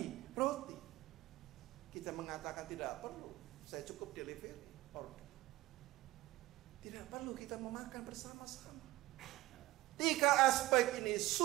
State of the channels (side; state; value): left; quieter; 18.3 dB